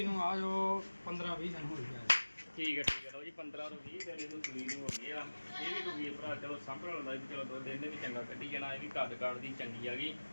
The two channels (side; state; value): both; inverted; correlation -1.00